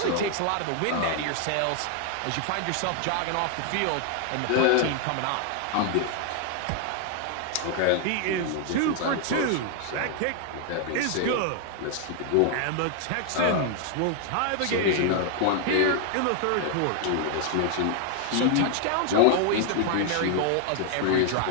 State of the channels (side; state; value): both; different; correlation 0.00